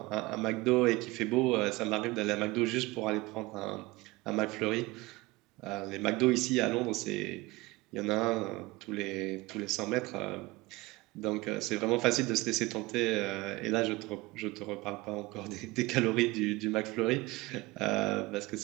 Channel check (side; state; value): left; quieter; 21.5 dB